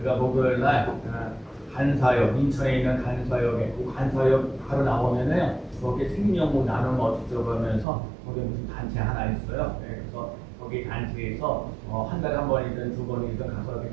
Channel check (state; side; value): drops out; left; at 7.9 s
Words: 목요일 날 간사역, 인천에 있는 간사역에 그 간사역 바로 나오면은 거기 생명부 나눔 어쩌고 하면서 거기 무슨 단체 하나 있어요. 그래서 거기 단체에서 한 달에 한 번이든 두 번이든 가서